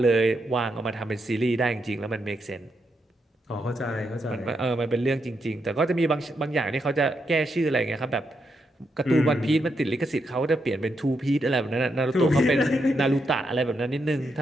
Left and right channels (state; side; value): normal; both; correlation 0.82